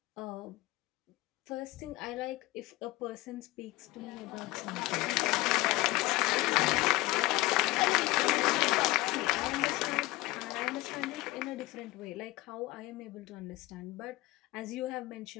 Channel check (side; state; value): right; quieter; 20.2 dB